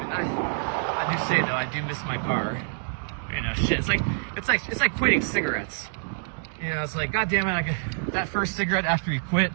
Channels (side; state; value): left; silent; digital silence